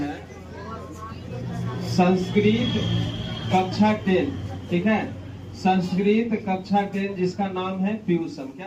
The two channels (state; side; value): identical; both; correlation 1.00